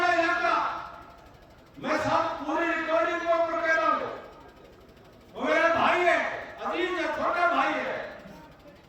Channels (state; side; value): identical; both; correlation 1.00